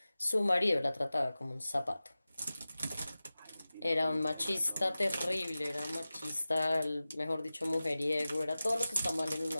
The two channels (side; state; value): both; inverted; correlation -0.96